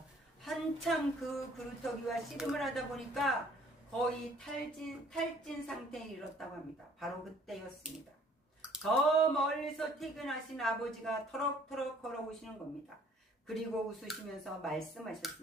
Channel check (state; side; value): normal; both; correlation 0.57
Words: 한참 그 그루터기와 씨름을 하다 보니까 거의 탈진 상태에 이르렀다고 합니다. 바로 그때였습니다. 저 멀리서 퇴근하신 아버지가 터럭터럭 걸어오시는 겁니다. 그리고 웃으시면서